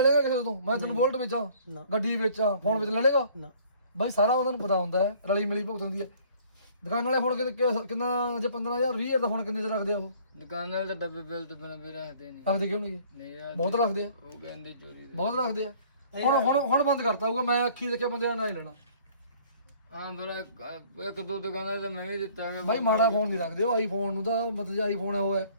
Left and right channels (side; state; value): both; inverted; correlation -0.55